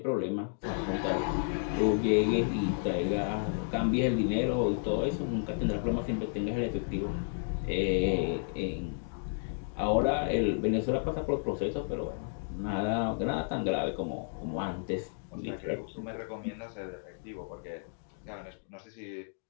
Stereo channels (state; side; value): silent; right; digital silence